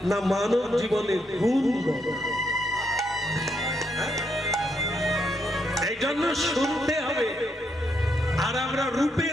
না মানব জীবনের গুণ বড়? এই জন্য শুনতে হবে। আর আমরা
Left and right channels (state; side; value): normal; both; correlation 0.77